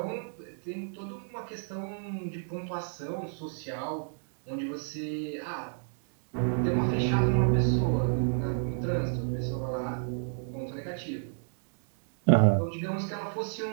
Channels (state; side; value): silent; left; digital silence